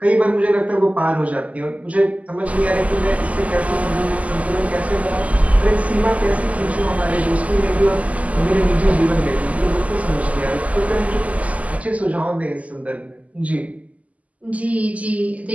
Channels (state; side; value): late; left; 0.072 ms